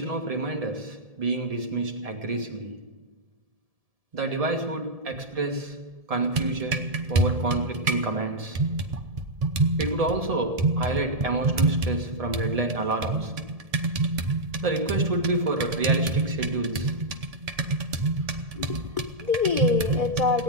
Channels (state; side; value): late; left; 1.7 ms